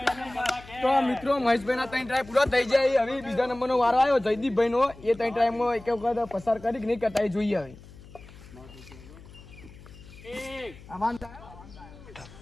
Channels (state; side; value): noise; left; hum, 19 dB below the sound